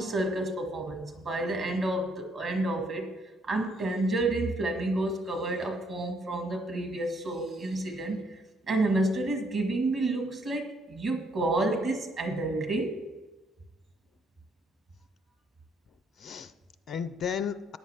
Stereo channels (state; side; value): normal; both; correlation 0.69